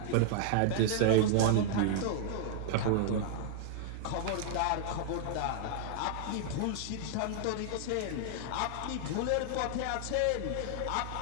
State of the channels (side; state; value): both; different; correlation -0.01